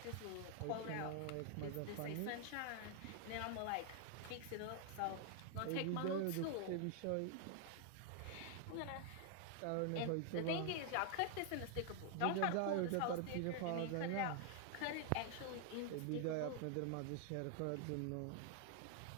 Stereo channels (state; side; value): different; both; correlation 0.00